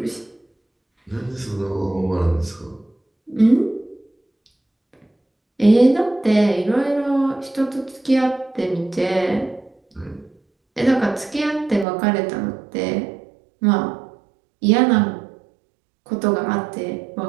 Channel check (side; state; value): left; drops out; at 11.9 s